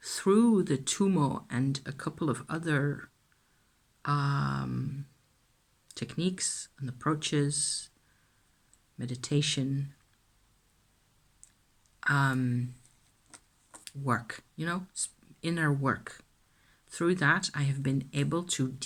through the Tummo and a couple of other techniques and approaches, meditation, work, you know, inner work. Through that, I have been able to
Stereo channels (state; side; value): identical; both; correlation 1.00